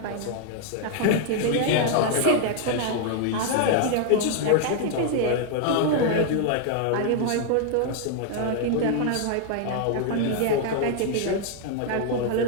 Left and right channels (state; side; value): different; both; correlation 0.00